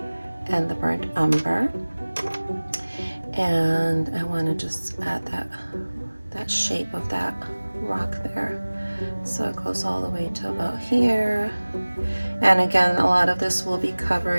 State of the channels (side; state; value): both; inverted; correlation -1.00